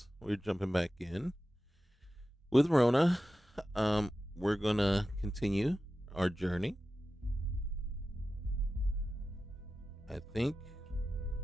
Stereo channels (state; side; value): normal; both; correlation 0.93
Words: we're jumping back in with Rhona. We're gonna continue our journey. I think